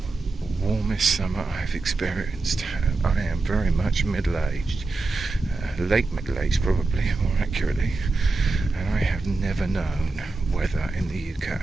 warmest summer I've experienced. I am very much middle-aged, late middle-aged probably, more accurately, and I have never known weather in the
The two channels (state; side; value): quieter; left; 3.5 dB